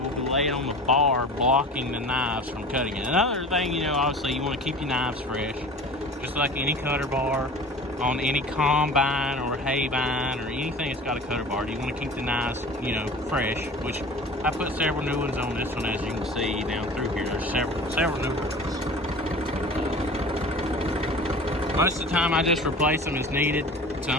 be laid on the bar, blocking the knives from cutting it. Another thing, you know, obviously you want to keep your knives fresh, just like any cutter bar on any combine or hay vine or anything that's got a cutter bar. You want to keep the knives, you know, fresh, which I put several new ones on this one, as you can see down through here. There's several new ones. Most of the time I just replace them as needed.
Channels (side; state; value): both; normal; correlation 0.39